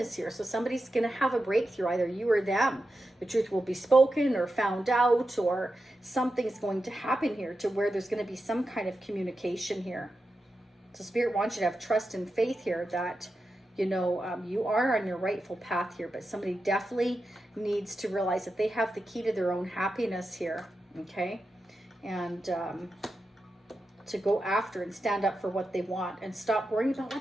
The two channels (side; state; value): both; normal; correlation 0.90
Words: here. So somebody's going to have a breakthrough, either you or them. The truth will be spoken or found out, or something's going to happen here to where there's going to be some kind of communication here. So Spirit wants you to have trust and faith here that, you know, you are on your rightful path here, but somebody definitely needs to realize that they have the key to their own happiness here, okay? And to go after and stand up for what they want and stop worrying about